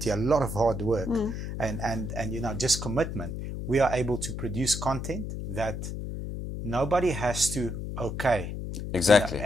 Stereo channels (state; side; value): noise; left; hum, 5 dB below the sound